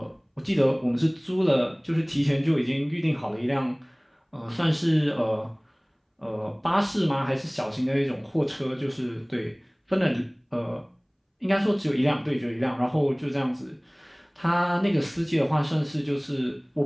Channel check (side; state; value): both; identical; correlation 1.00